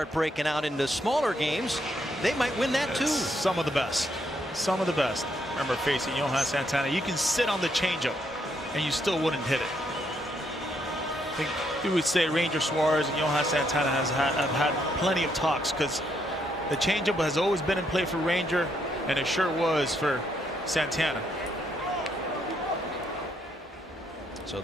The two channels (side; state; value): both; normal; correlation 0.75